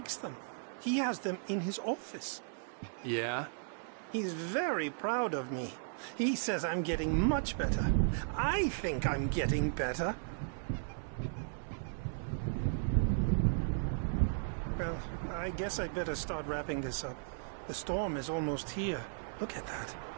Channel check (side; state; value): left; silent; 54 dB below the other